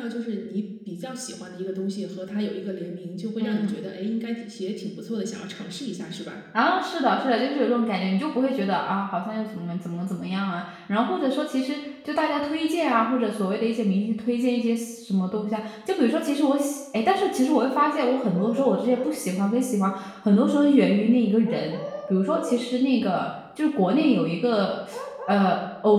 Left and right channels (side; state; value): both; identical; correlation 1.00